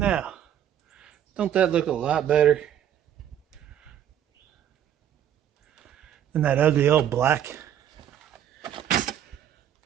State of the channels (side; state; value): left; quieter; 10.3 dB